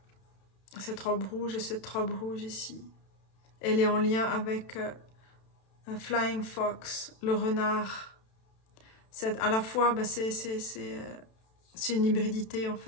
Cette robe rouge et cette robe rouge ici. Elle est en lien avec un Flying Fox, le renard. À la fois, bah, c'est une hybridité en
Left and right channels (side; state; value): right; late; 32 ms